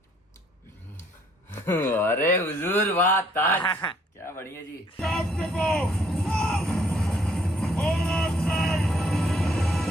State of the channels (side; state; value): both; normal; correlation 0.65